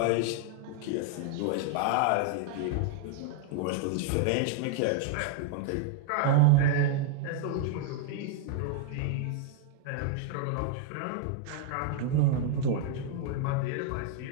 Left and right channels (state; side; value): different; both; correlation -0.01